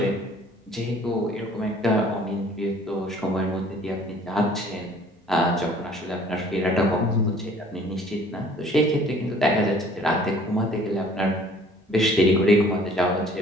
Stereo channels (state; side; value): normal; both; correlation 0.54